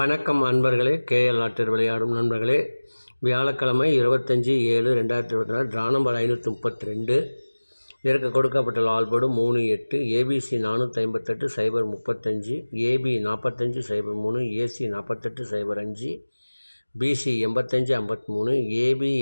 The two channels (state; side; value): inverted; both; correlation -1.00